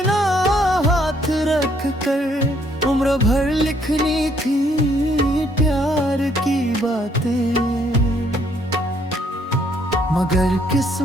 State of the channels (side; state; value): both; normal; correlation 0.67